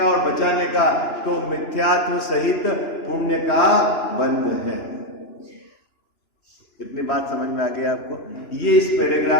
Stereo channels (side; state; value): right; late; 3.0 ms